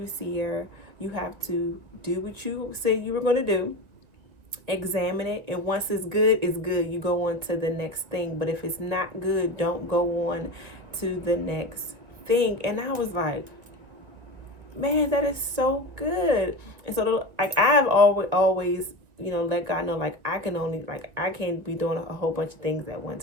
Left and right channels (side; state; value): left; late; 2.1 ms